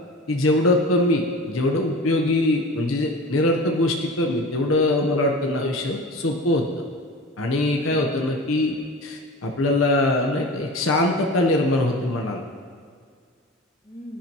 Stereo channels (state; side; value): normal; both; correlation 0.35